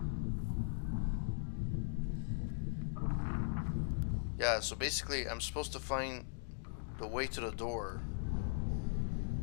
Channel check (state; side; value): silent; right; digital silence